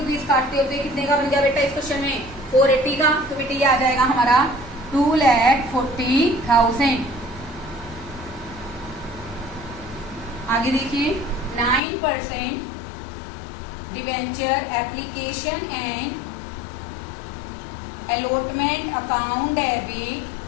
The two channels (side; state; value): right; drops out; at 11.8 s